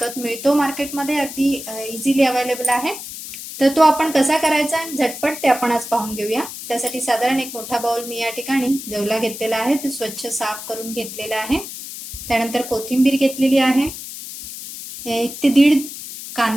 मिळतो मार्केटमध्ये, अगदी इझिली अवेलेबल आहे. तर तो आपण कसा करायचा झटपट ते आपण आज पाहून घेऊया. त्यासाठी साधारण एक मोठा बाउल मी या ठिकाणी जवला घेतलेला आहे, तो स्वच्छ साफ करून घेतलेला आहे. त्यानंतर कोथिंबीर घेतलेली आहे. 1 ते 1.5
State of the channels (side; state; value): left; noise; hiss, 10 dB below the sound